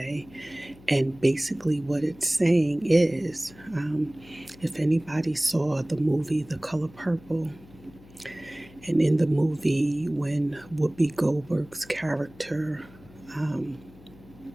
And basically, what it's saying is if anybody saw the movie The Color Purple, and in the movie, when Whoopi Goldberg's character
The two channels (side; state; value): left; noise; hum, 23 dB below the sound